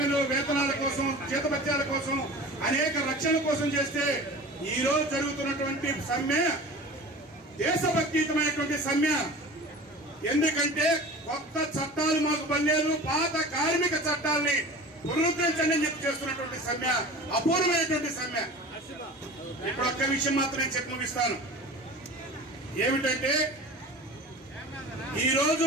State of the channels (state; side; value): normal; both; correlation 0.37